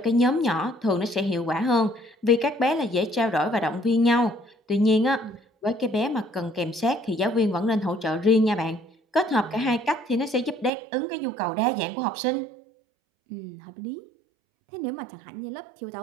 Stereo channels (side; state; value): left; drops out; at 10.7 s